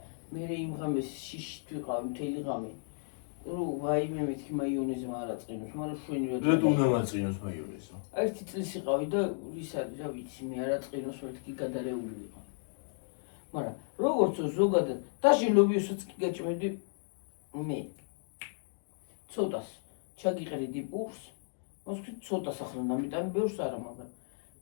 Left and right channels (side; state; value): right; silent; digital silence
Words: მე იმ ღამეს შიშით ვიყავი მთელი ღამე. რო ვაიმე მეთქი მაიონეზმა არ აწყინოს, მაგრამ შვენივად. რატომ უნდა მაწყინოს მაიონეზო? ერთი წლის იყავი და ის არის რა ვიცი, მე არ აწყინოს მეთქი გადარეული ვიყავ. მაგრამ როგორც ზოგადად დაში ლობიოსაც კი გაჭმევდი მე. ცოტას ჩაგიყრიდი პურს. მოსკი ცოტას ახლა ნამიტანი ბევრს არა, მაგრამ